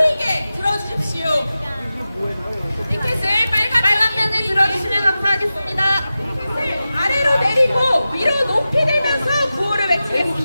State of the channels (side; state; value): both; inverted; correlation -0.94